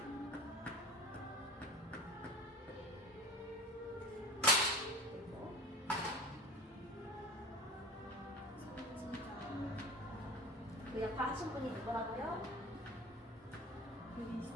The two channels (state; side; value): normal; both; correlation 0.34